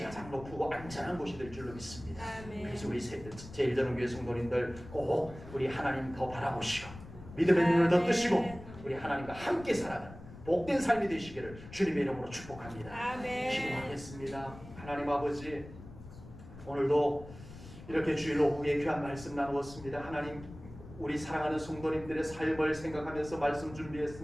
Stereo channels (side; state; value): left; noise; rumble, 15 dB below the sound